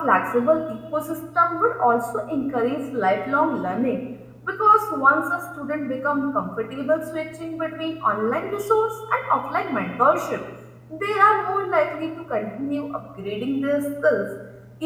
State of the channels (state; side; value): identical; both; correlation 1.00